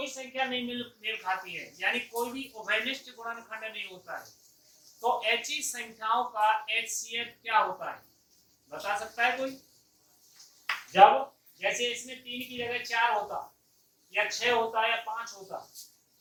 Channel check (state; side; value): identical; both; correlation 1.00